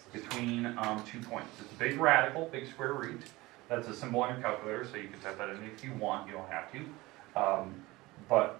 between 2 points. It's a big radical, big square root. That's a symbol on your calculator, so you can type that in if you want. You don't have to. But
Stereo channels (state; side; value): quieter; left; 20.5 dB